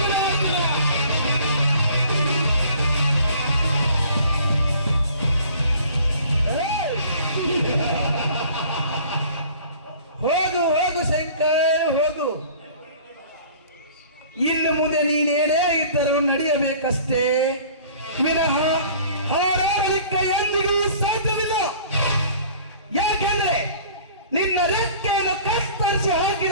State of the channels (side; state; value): both; inverted; correlation -0.49